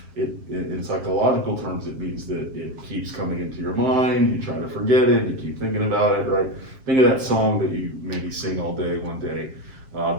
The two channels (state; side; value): late; left; 7.5 ms